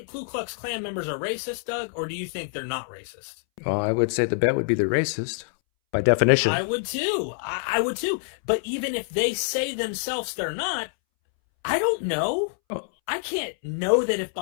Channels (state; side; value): silent; right; 61 dB below the other